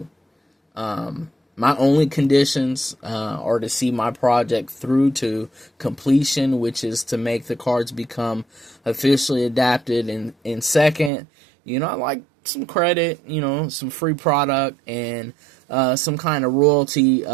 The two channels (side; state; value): left; drops out; at 11.1 s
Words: My only conditions are to see my project through to completion, which is to make the cards become officially adapted. And second, I like some credit, some free product, and some kind of royalty